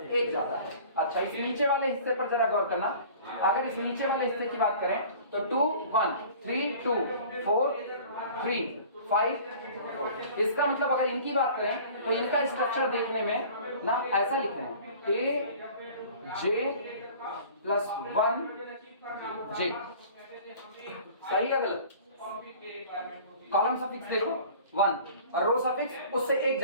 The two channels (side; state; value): both; inverted; correlation -0.45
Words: 1 ज्यादा है। अच्छा, इस नीचे वाले हिस्से पर जरा गौर करना। अगर इस नीचे वाले हिस्से की बात करें तो 2 1 3 2 4 3 5, इसका मतलब अगर इनकी बात करें तो इनका स्ट्रक्चर देखने में ना ऐसा लिख रहे हैं aj+1 j। सही है गलत? कॉलम सफिक्स देखो 1 और रो सफिक्स उससे 1